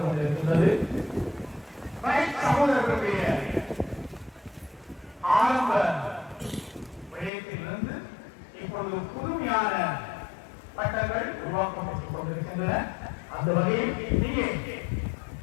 கொண்டிருக்கின்றது. சகோதரர்களுடைய ஆரம்ப விடயத்திலிருந்து இப்பொழுது புதுமையான பட்டங்கள் உருவாக்கப்பட்டுக் கொண்டிருக்கின்றன. அந்த வகையில் இங்கே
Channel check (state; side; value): drops out; right; at 7.3 s